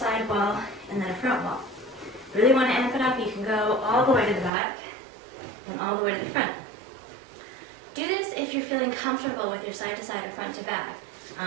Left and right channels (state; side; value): drops out; left; at 4.5 s